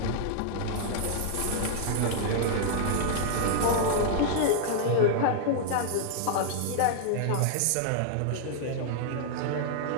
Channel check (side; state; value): both; different; correlation -0.01